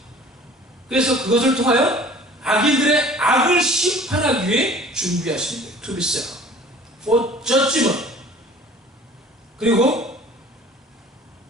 그래서 그것을 통하여 악인들의 악을 심판하기 위해 준비하신대요. To be set up for judgment. 그리고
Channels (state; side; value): normal; both; correlation 0.48